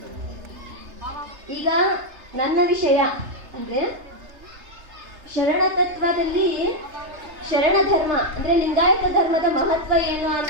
ಈಗ ನನ್ನ ವಿಷಯ ಅಂದ್ರೆ ಶರಣ ತತ್ವದಲ್ಲಿ ಶರಣ ಧರ್ಮ ಅಂದ್ರೆ ಲಿಂಗಾಯತ ಧರ್ಮದ ಮಹತ್ವ ಏನು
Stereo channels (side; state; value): left; late; 3.3 ms